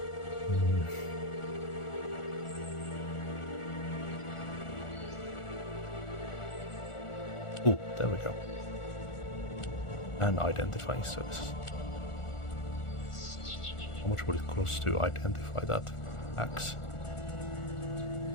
Ooh, there we go. And identifying services. How much would it cost to identify that axe?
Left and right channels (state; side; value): late; right; 1.4 ms